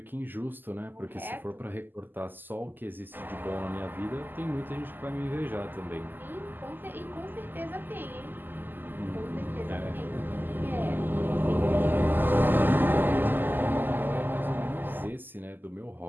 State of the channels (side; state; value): left; late; 0.090 ms